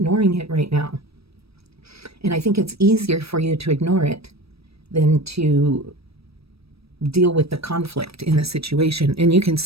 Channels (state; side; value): late; left; 0.78 ms